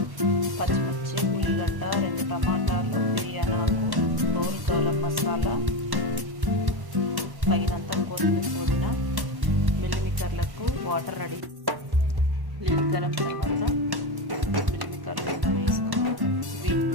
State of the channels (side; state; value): left; late; 1.1 ms